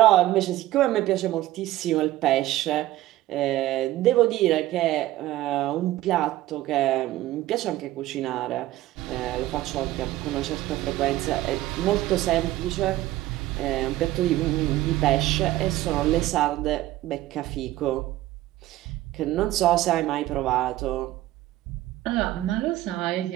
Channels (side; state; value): left; quieter; 15.6 dB